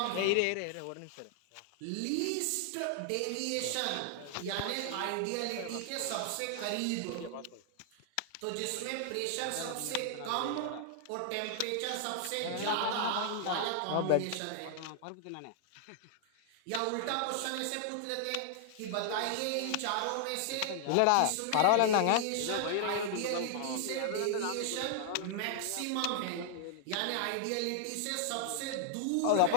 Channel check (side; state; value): both; different; correlation 0.00